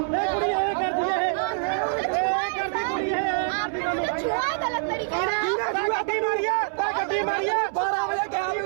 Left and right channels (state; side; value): silent; left; 62 dB below the other